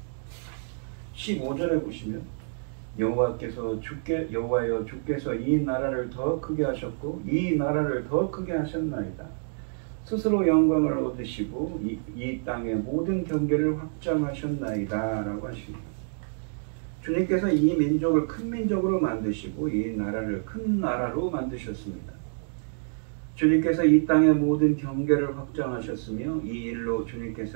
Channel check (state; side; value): silent; left; digital silence